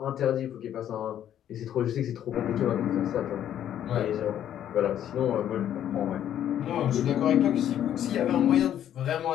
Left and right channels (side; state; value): right; quieter; 10.7 dB